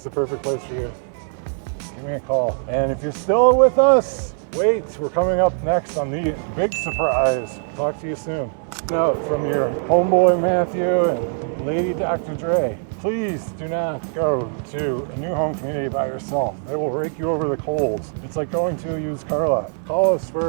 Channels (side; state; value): left; silent; digital silence